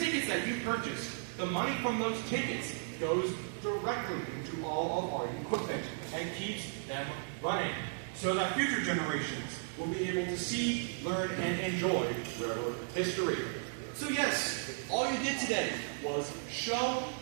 that you purchase, the money from those tickets goes directly into all of our equipment and keeps them running so that future generations will be able to see, learn, and enjoy railroad history. So yes, all you did today was show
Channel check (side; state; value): left; silent; digital silence